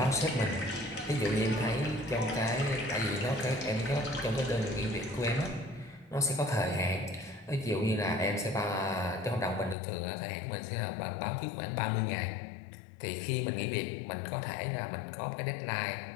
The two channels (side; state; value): right; drops out; at 9.8 s